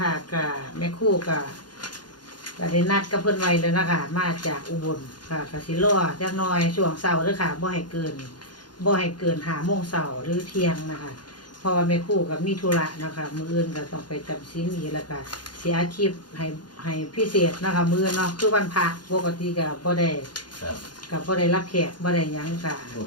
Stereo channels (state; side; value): late; right; 0.70 ms